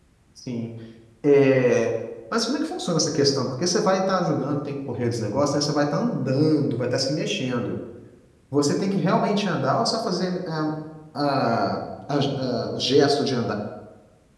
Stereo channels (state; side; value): identical; both; correlation 1.00